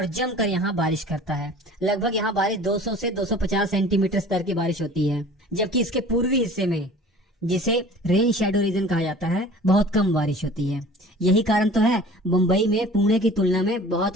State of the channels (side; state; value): both; normal; correlation 0.45